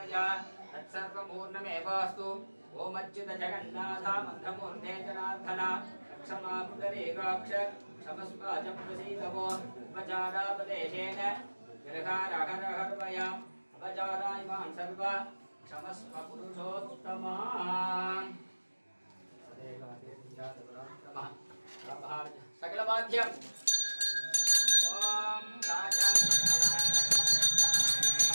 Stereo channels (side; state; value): both; inverted; correlation -1.00